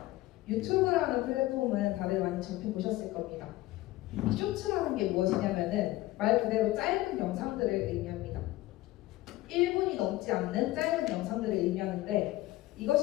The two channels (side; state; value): right; quieter; 17.5 dB